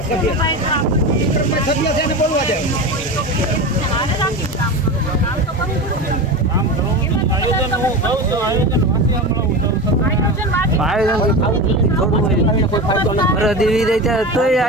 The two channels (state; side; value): normal; both; correlation 0.25